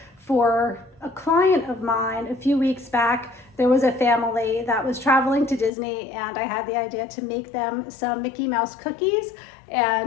for a client of mine a few weeks back. There was a family that was traveling to Disney, and I had the idea to make them some Mickey Mouse cookies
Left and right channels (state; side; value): drops out; right; at 5.7 s